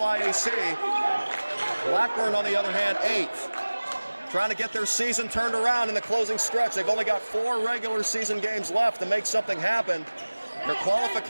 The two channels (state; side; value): inverted; both; correlation -1.00